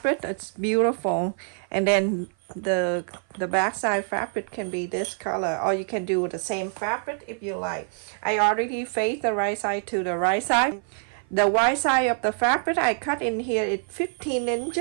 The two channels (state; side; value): silent; left; 56 dB below the other